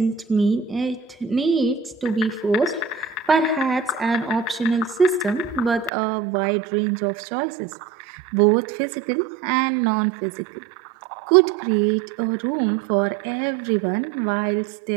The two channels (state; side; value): drops out; left; at 5.9 s